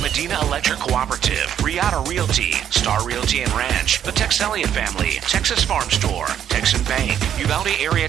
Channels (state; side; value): quieter; left; 9.7 dB